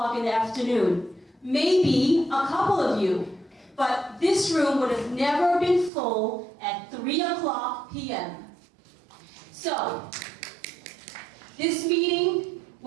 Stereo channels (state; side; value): drops out; left; at 5.9 s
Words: in the afternoon. Maybe a couple of you, but this room would have never been full at 3 o'clock p.m. So, this meeting